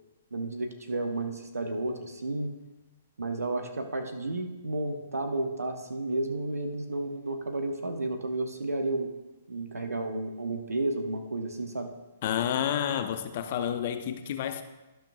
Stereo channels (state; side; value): inverted; both; correlation -0.68